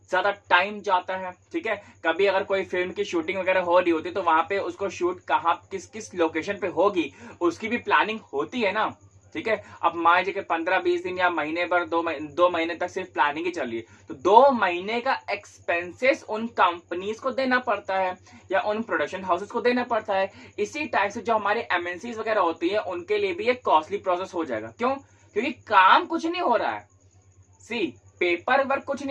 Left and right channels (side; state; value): both; identical; correlation 1.00